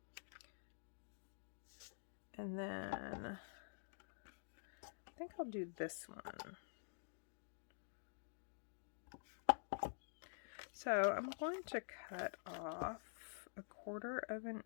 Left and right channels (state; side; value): silent; right; digital silence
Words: And then I think I'll do this one. So I'm going to cut off 1/4 of an